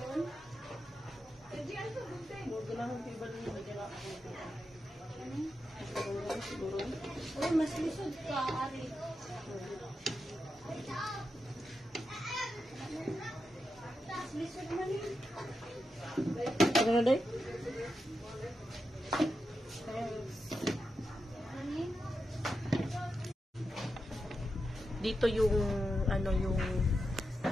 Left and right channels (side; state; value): both; normal; correlation 0.88